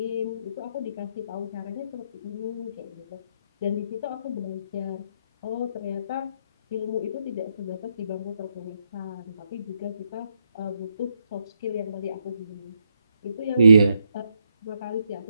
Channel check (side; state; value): both; inverted; correlation -0.78